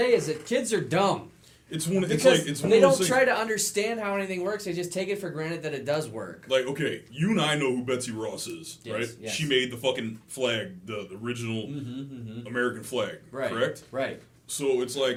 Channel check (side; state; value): both; identical; correlation 1.00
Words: is that kids are dumb. They don't try to understand how anything works. They just take it for granted that it does work. Like, okay, you and I know who Betsy Ross is, yes, right? Yes. She made the fucking flag, the original American flag, right, correct? Right. So it's